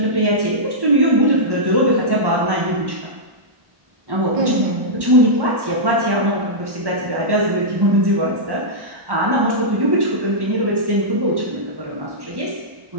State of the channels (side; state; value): left; late; 1.1 ms